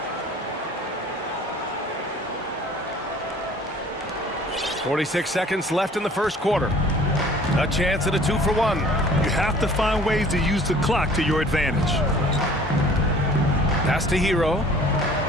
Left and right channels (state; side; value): normal; both; correlation 0.51